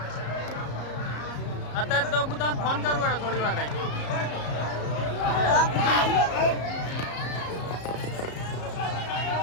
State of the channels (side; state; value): right; late; 34 ms